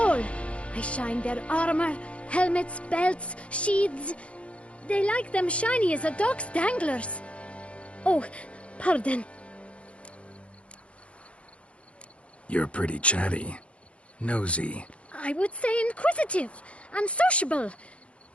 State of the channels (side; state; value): right; late; 0.062 ms